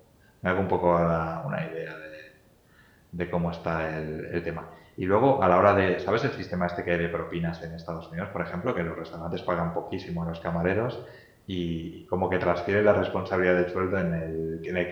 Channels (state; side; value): identical; both; correlation 1.00